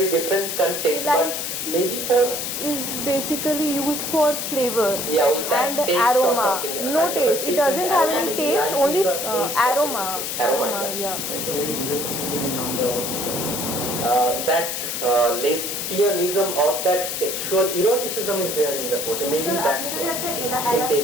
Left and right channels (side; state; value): left; noise; hiss, 3 dB below the sound